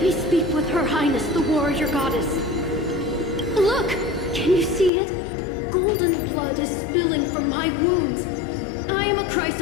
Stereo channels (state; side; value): drops out; right; at 4.9 s